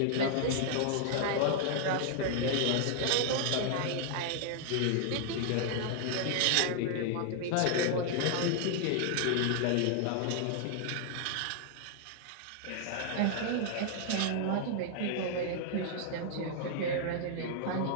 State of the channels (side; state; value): both; different; correlation 0.00